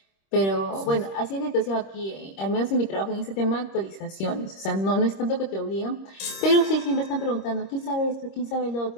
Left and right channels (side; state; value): right; late; 26 ms